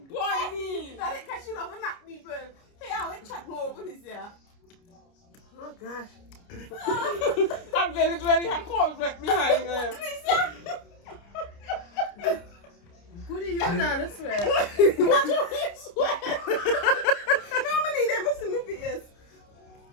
That it catch you love and knock people. Hey, I will chat more over this year. Oh gosh. I'm very hard cold right behind her. Who do you know this way? What you mean sweat? Normally they must see me face.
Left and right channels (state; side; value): late; right; 29 ms